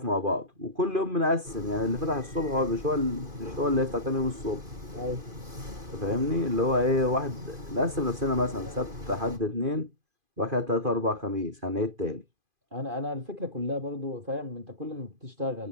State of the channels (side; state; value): left; late; 2.5 ms